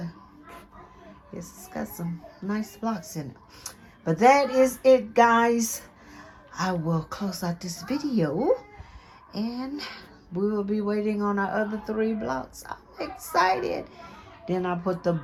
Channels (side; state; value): both; identical; correlation 1.00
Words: Yes, it's got some nice blocks in it. But that is it, guys. I will close out this video. And we will be waiting on our other 3 blocks. I'm excited. Then I put the